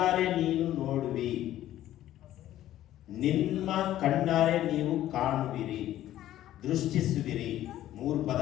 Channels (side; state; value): right; quieter; 13.2 dB